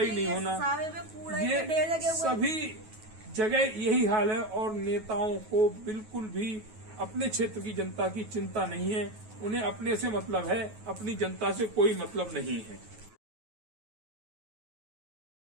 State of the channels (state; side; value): late; left; 9.3 ms